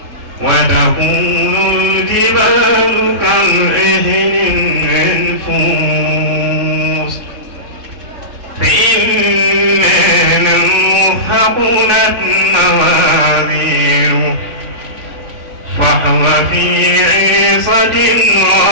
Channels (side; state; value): left; late; 3.6 ms